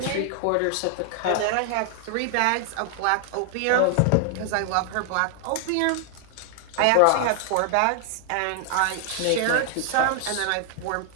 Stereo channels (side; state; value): both; different; correlation 0.00